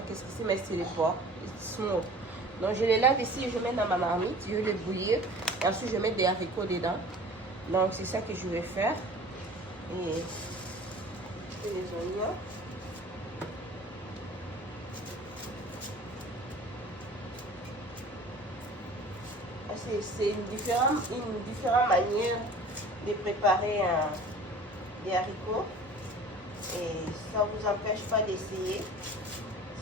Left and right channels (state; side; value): normal; both; correlation 0.44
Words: qu'est-ce que c'est. Mais c'est les porcs. Smoke. Donc, je les lave ici. Je mets dans ma marmite. Je vais les bouillir. Et ensuite, je vais mettre des haricots dedans. Donc, c'est ça que je vais faire. Et les oignons. C'est une différente manière de préparer des haricots. Et ça ne vous empêche pas d'essayer.